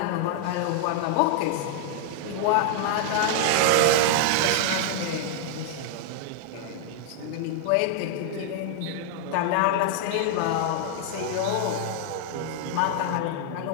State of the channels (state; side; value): different; both; correlation 0.00